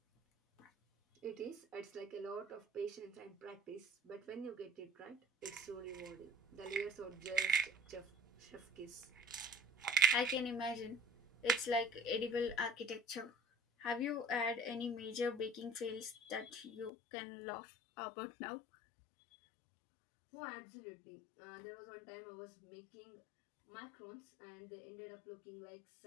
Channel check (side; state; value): right; drops out; at 16.9 s